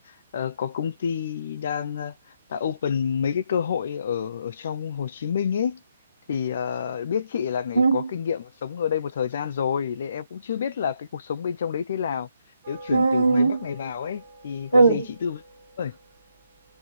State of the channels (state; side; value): inverted; both; correlation -0.76